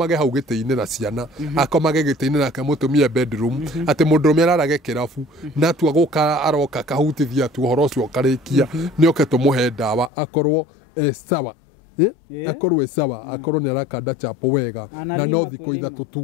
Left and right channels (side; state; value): right; drops out; at 10.1 s